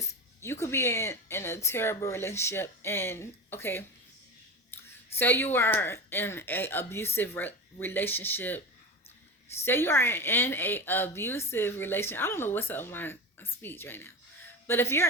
you could be in a terrible relationship and, okay, say you are in a abusive relationship. Say you are in a abusive relationship. I don't know what's up with my speech right now. But if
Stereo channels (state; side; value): normal; both; correlation 0.25